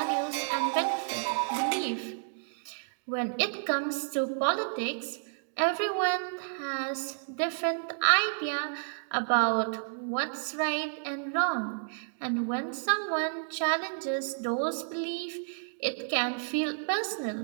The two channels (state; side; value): silent; left; digital silence